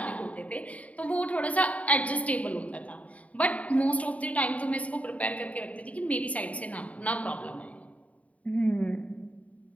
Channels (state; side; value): late; right; 0.068 ms